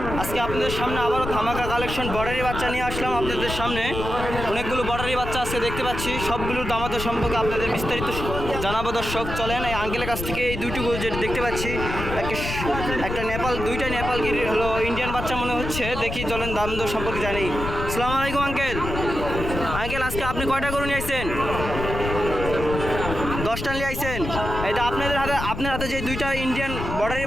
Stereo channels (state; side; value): noise; left; rumble, 6 dB below the sound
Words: আজকে আপনাদের সামনে আবারও ধামাকা কালেকশন বর্ডারি বাচ্চা নিয়ে আসলাম আপনাদের সামনে। অনেকগুলো বর্ডারি বাচ্চা আজকে দেখতে পাচ্ছি, সবগুলোর দামাদর সম্পর্কে আপনাদের বিস্তারিত জানাবো দর্শক। চলেন এই আঙ্কেলের কাছ থেকে এই দুইটুকু যেটা দেখতে পাচ্ছি, একটা নেপাল, দুইটা নেপাল গির হলো ইন্ডিয়ান বাচ্চা মনে হচ্ছে। দেখি চলেন দামদর সম্পর্কে জানি। আসসালামু আলাইকুম আঙ্কেল। আঙ্কেল আজকে আপনি কয়টা গরু নিয়ে আসছেন? 10টা নিয়ে আইছেন। এটা আপনার হাতে যে দুইটা ইন্ডিয়ান বর্ডারি